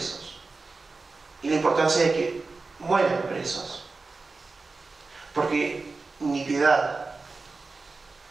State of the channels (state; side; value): quieter; left; 3.9 dB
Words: y la importancia de que mueran presos, porque ni piedad,